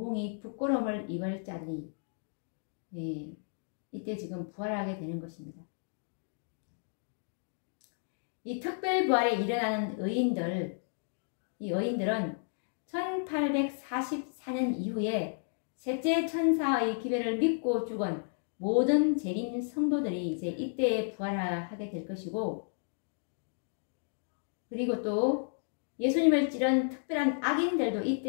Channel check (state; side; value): silent; right; digital silence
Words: 부끄러움을 입을 자들이 이때 지금 부활하게 되는 것입니다. 이 특별 부활에 일어나는 이 의인들은 1844년 이후에 셋째 천사의 기별을 믿고 죽은 모든 재림 성도들이 이제 이때에 부활하게 될 것이고, 그리고 또 예수님을 찌른 특별한 악인들도